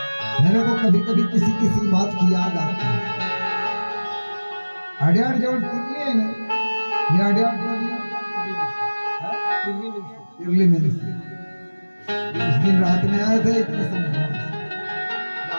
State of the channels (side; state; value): both; inverted; correlation -1.00